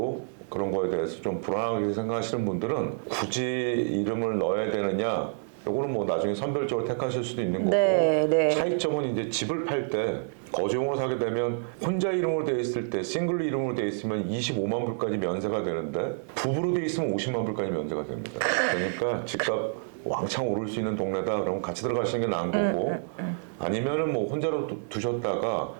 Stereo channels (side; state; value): left; silent; digital silence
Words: 그런 거에 대해서 좀 불안하게 생각하시는 분들은 굳이 이름을 넣어야 되느냐, 요거는 뭐 나중에 선별적으로 택하실 수도 있는 거고, 네. 차이점은 이제 집을 팔 때 거주용으로 사게 되면 혼자 이름으로 돼 있을 때, 싱글로 이름으로 돼 있으면 25만 불까지 면세가 되는데 부부로 돼 있으면 50만 불까지 면세가 됩니다. 그러니까 집값 왕창 오를 수 있는 동네다 그러면 같이 들어가시는 게 나은 거고, 아니면은 뭐 혼자로 두셨다가